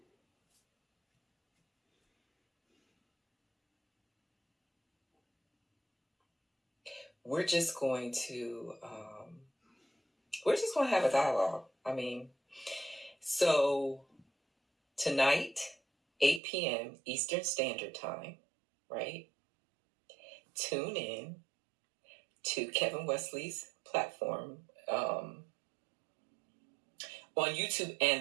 we're just going to have a dialogue. I mean, so tonight, 8 p.m. Eastern Standard Time, right? Tune in to Kevin Wesley's platform on YouTube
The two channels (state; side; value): drops out; left; at 16.4 s